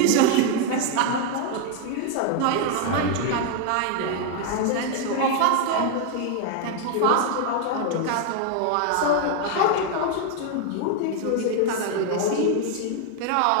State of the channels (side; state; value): both; different; correlation 0.00